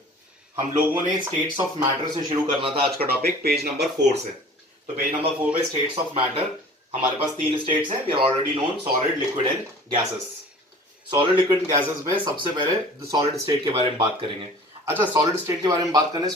हम लोगों ने states of matter से शुरू करना था आज का टॉपिक पेज नंबर 4 से। तो पेज नंबर 4 पे स्टेट्स ऑफ मैटर हमारे पास 3 स्टेट्स हैं। We are already known solid, liquid and gases. Solid, liquid and gases में सबसे पहले सॉलिड स्टेट के बारे में बात करेंगे। अच्छा, सॉलिड स्टेट के बारे में बात करने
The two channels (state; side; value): normal; both; correlation 0.45